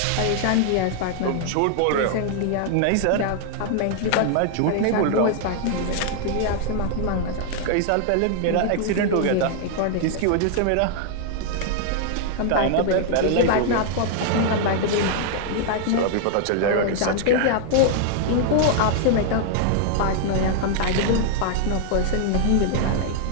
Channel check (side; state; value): both; different; correlation 0.00